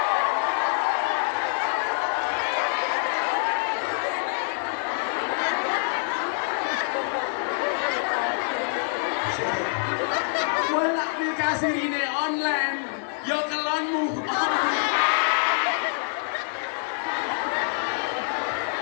Bolak nikah siri ini online, yo kelonmu.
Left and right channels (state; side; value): silent; right; digital silence